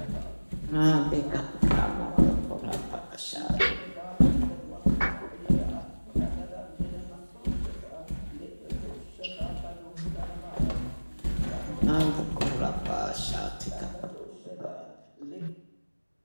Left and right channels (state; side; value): inverted; both; correlation -1.00